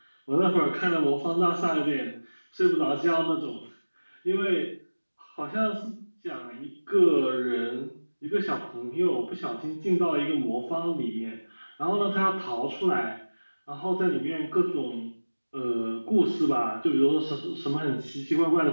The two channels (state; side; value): inverted; both; correlation -1.00